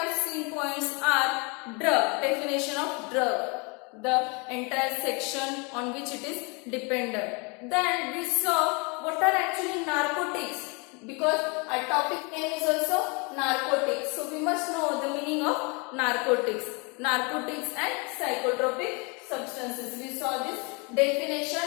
seen points are drug, definition of drug, the entire section on which it is dependent. Then we saw what are actually narcotics, because our topic name is also narcotics. So we must know the meaning of narcotics and psychotropic substances. We saw this definition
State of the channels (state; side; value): quieter; right; 31.0 dB